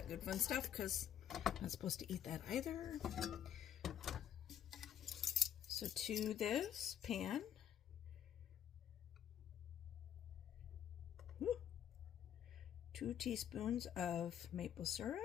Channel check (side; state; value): right; quieter; 10.0 dB